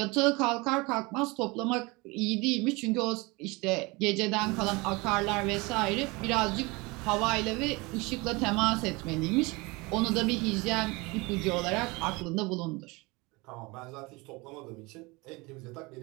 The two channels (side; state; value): left; quieter; 25.0 dB